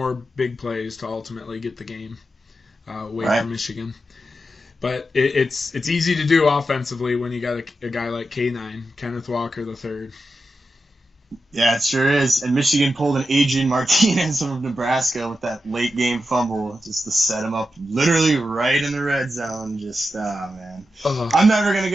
big plays to ultimately get the game away from Michigan. But it's easy to do offensively when you got a guy like K9, Kenneth Walker III. Yeah, it sure is. And Michigan pulled an Adrian Martinez from Nebraska with that late game fumble just to set him up literally right in the red zone. Just, man. Uh-huh. I'm never going to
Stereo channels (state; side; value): normal; both; correlation 0.89